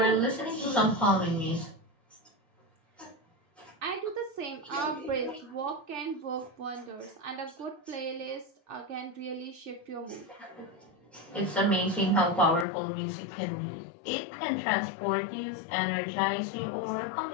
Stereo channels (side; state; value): right; drops out; at 12.7 s